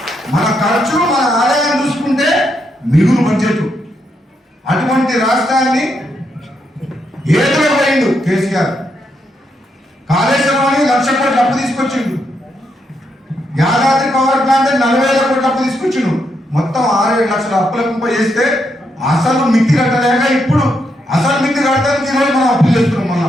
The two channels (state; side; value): normal; both; correlation 0.80